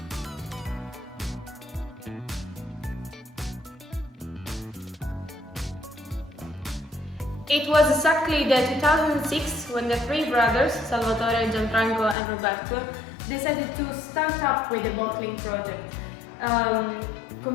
It was exactly the 2006 when the three brothers, Salvatore, Gianfranco and Roberto, decided to start up with the bottling project,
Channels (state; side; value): drops out; right; at 12.2 s